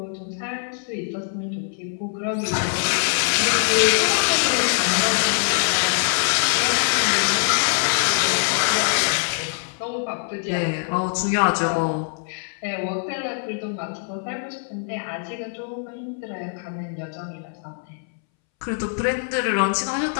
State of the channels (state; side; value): silent; right; 63 dB below the other